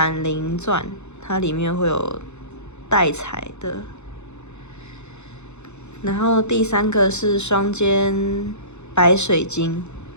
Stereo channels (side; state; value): right; late; 0.82 ms